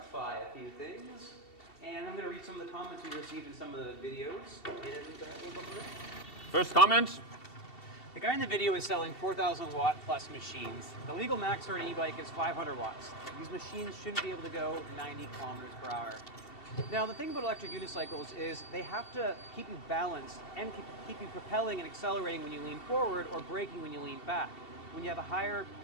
a few things. And I'm going to read some of the comments we received in some of the videos. And we'll go from there. First comment. The guy in the video is selling 4,000 watt plus machines. The legal max for an e-bike is 500 watts. These machines shouldn't be able to go 90 kilometers per hour. Now, the thing about electric unicycles is they have to keep you balanced and keep you propelling and accelerating when you lean forward or braking when you lean back. When you have a higher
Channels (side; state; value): right; late; 2.7 ms